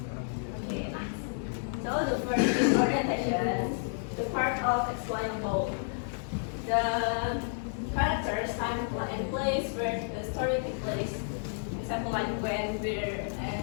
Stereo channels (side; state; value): right; silent; digital silence